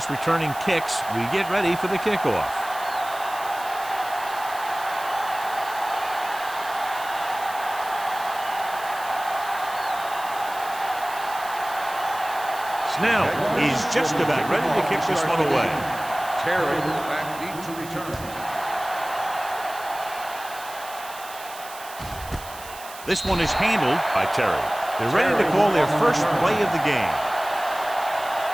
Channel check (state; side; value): noise; right; hiss, 15 dB below the sound